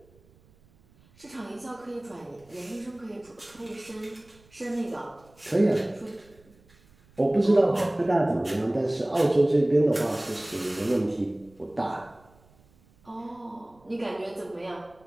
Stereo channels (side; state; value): right; noise; rumble, 30 dB below the sound